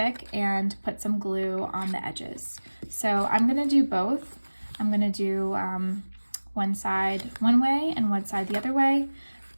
and put some glue on the edges. So I'm gonna do both. I'm gonna do one side one way and one side the other way,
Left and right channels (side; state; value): both; inverted; correlation -1.00